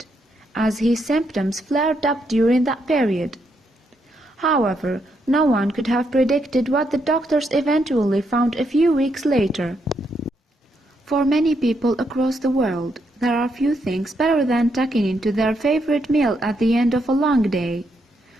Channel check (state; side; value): normal; both; correlation 0.78